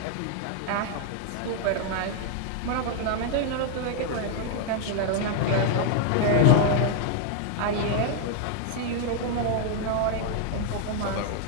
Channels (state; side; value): different; both; correlation 0.00